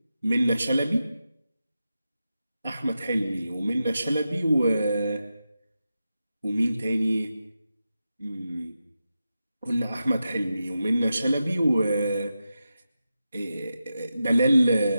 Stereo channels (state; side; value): inverted; both; correlation -0.90